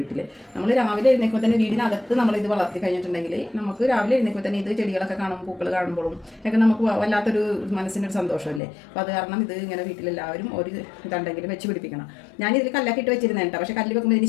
നമ്മൾ രാവിലെ എഴുന്നേൽക്കുമ്പോൾ തന്നെ വീടിനകത്ത് നമ്മളിത് വളർത്തി കഴിഞ്ഞിട്ടുണ്ടെങ്കിൽ നമുക്ക് രാവിലെ എഴുന്നേൽക്കുമ്പോൾ തന്നെ ഇത് ചെടികളൊക്കെ കാണുമ്പോൾ പൂക്കൾ കാണുമ്പോഴും ഒക്കെ നമുക്ക് വല്ലാത്തൊരു മനസ്സിനൊരു സന്തോഷമല്ലേ. അപ്പോൾ അത് കാരണം ഇത് ഇങ്ങനെ വീട്ടിലെല്ലാവരും ഒരു ഇതുണ്ടെങ്കിലും വെച്ച് പിടിപ്പിക്കണം. ഞാനിതിൽ കല്ലൊക്കെ ഇട്ട് വെച്ചിരുന്നേട്ടോ. പക്ഷേ കല്ല് വെക്കുമ്പോൾ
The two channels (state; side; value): drops out; right; at 8.6 s